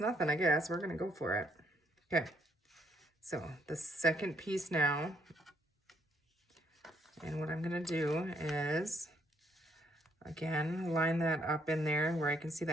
I guess. We're gonna go for it. Okay, so the second piece now, And what I'm gonna do is, again, line that up in there where I can see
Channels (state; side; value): normal; both; correlation 0.70